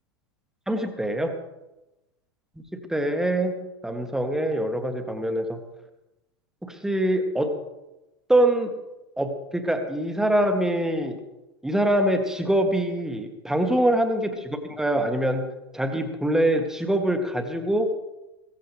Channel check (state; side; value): normal; both; correlation 0.67